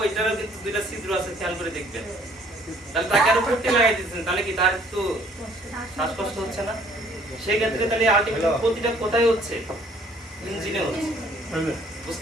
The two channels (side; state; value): both; normal; correlation 0.59